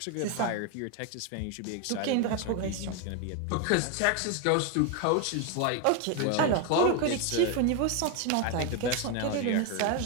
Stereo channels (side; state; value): both; different; correlation 0.01